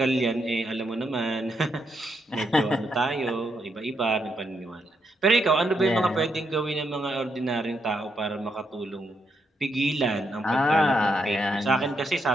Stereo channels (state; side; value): normal; both; correlation 0.79